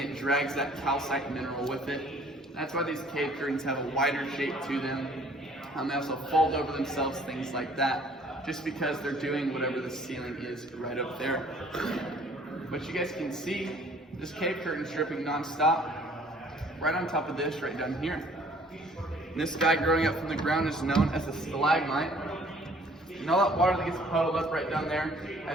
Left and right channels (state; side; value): normal; both; correlation 0.56